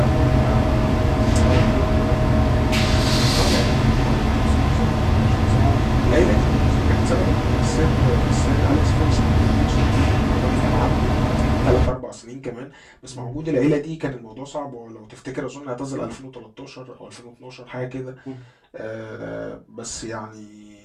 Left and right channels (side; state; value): both; identical; correlation 1.00